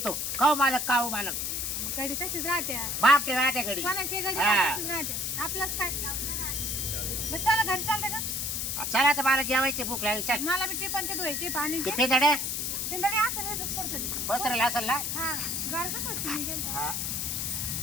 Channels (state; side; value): noise; left; hiss, 1 dB below the sound